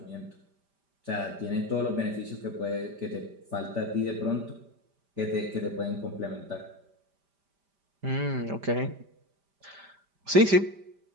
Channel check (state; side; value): late; left; 5.1 ms